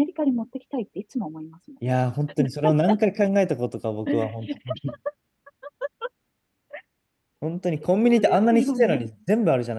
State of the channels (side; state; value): both; identical; correlation 1.00